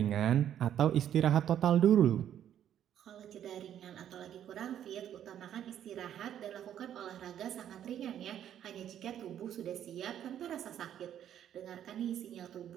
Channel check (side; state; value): left; quieter; 10.3 dB